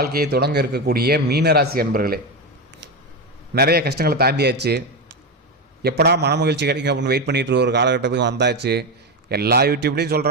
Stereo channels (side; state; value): both; normal; correlation 0.13